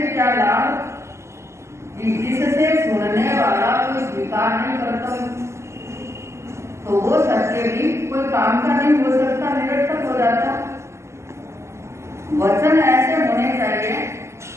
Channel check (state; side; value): late; left; 0.13 ms